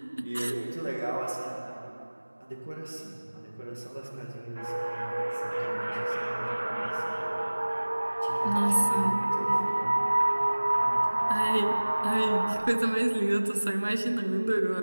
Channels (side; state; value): both; inverted; correlation -1.00